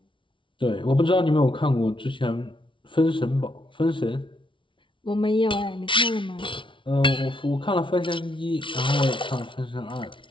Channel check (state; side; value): late; right; 0.25 ms